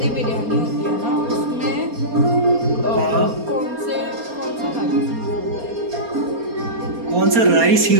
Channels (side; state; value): left; late; 4.3 ms